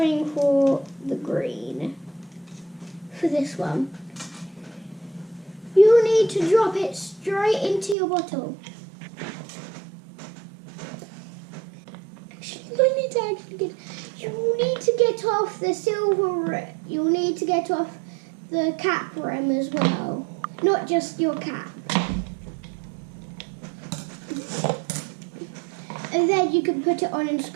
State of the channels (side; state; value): left; drops out; at 8.0 s